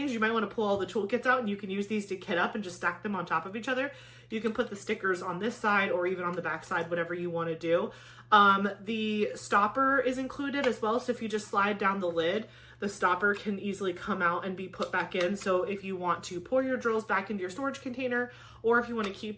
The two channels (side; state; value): both; identical; correlation 1.00